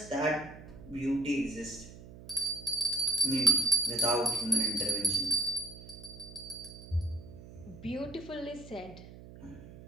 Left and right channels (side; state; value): right; noise; hum, 16 dB below the sound